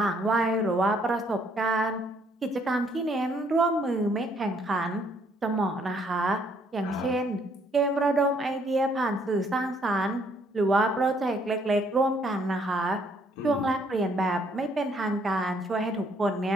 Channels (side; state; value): both; normal; correlation 0.67